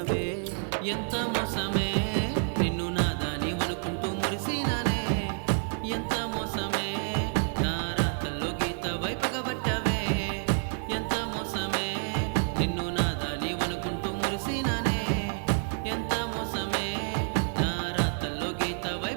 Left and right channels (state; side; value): silent; left; 59 dB below the other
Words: ఎంత మోసమే నిన్ను నాదాని అనుకుంటూ మురిసినానే ఎంత మోసమే గీత వైపగబట్టవే ఎంత మోసమే నిన్ను నాదాని అనుకుంటూ మురిసినానే ఎంత మోసమే నా రాతల్లో గీత